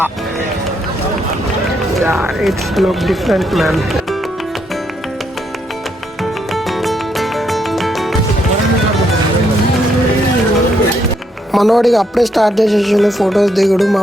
It's look different man. మనోడికి అప్పుడే స్టార్ట్ చేసేసిండు ఫొటోస్ దిగుడు.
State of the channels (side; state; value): both; normal; correlation 0.75